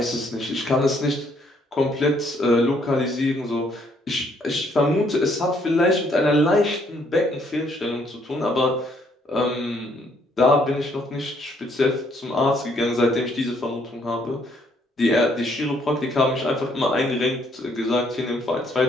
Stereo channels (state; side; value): normal; both; correlation 0.68